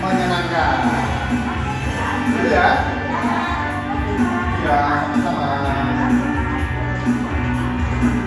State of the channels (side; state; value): both; identical; correlation 1.00